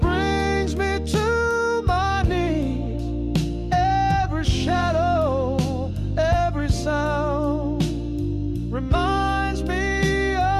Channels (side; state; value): both; identical; correlation 1.00